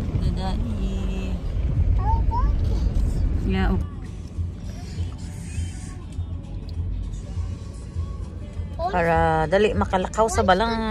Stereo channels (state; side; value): identical; both; correlation 1.00